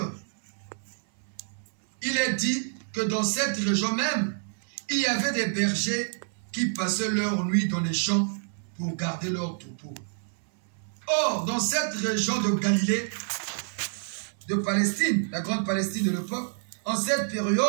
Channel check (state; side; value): silent; left; 59 dB below the other